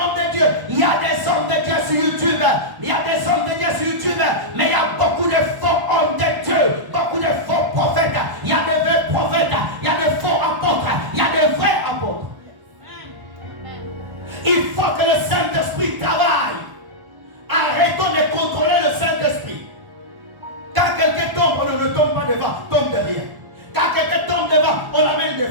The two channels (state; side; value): late; left; 1.1 ms